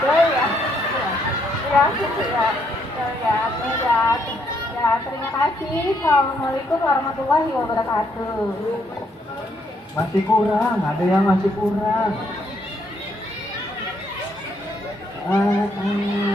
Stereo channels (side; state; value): both; normal; correlation 0.72